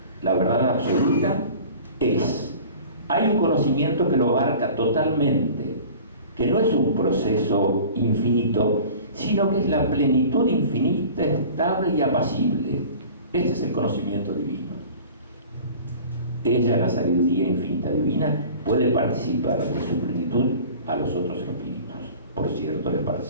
La verdad absoluta es. Hay un conocimiento que lo abarca totalmente, que no es un proceso infinito, sino que es la plenitud infinita, estable y apacible. Este es el conocimiento divino. Ella, la sabiduría infinita divina, puede participar de su plenitud a los otros espíritus. Por cierto, les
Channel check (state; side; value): inverted; both; correlation -0.43